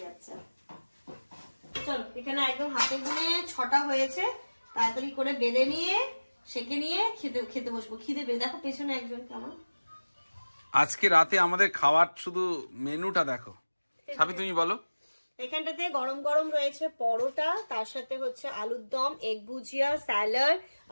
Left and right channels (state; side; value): inverted; both; correlation -1.00